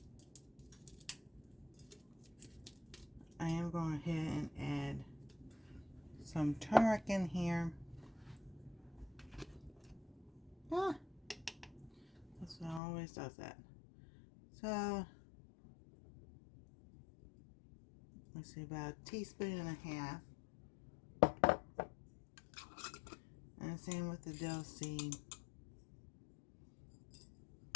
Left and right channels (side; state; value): right; drops out; at 12.8 s